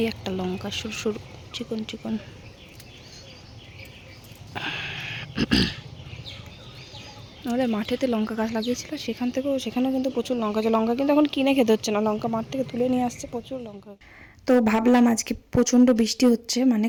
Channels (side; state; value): both; identical; correlation 1.00